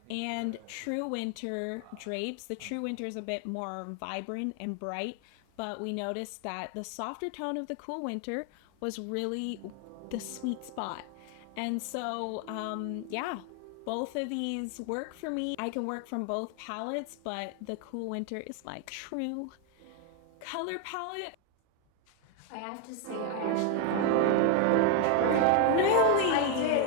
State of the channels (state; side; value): different; both; correlation 0.01